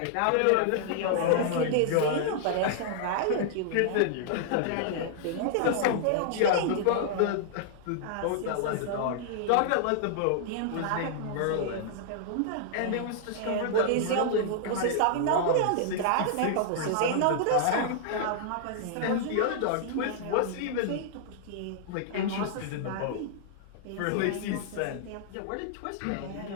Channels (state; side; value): different; both; correlation -0.01